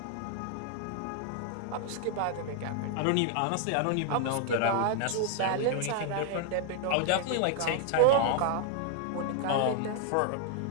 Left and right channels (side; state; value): both; different; correlation 0.00